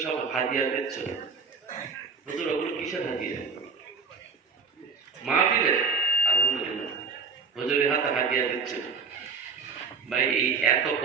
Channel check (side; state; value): left; quieter; 5.0 dB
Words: সব হাদিয়া দিচ্ছ। হুজুর ওগুলো কিসের হাদিয়া? মাহফিলে আলহামদুলিল্লাহ হুজুরের হাতে হাদিয়া দিচ্ছে। ভাই এই এত